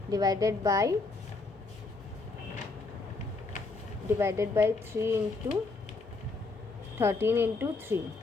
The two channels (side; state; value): right; quieter; 3.6 dB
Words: divided by 3 into 13 into 3,